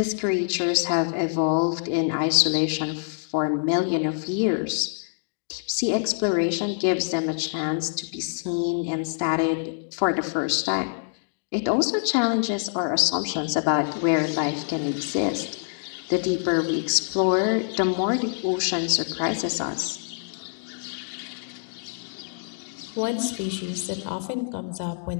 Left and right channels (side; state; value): right; silent; digital silence